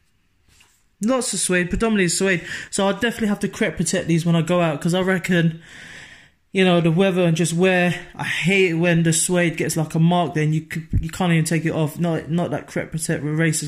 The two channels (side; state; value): both; identical; correlation 1.00